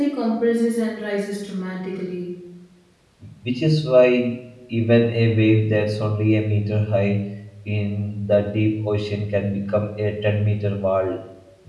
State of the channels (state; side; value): identical; both; correlation 1.00